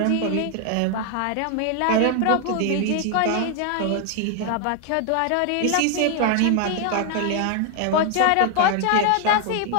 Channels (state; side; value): different; both; correlation 0.00